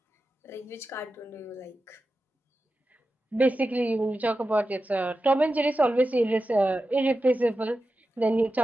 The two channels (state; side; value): normal; both; correlation 0.92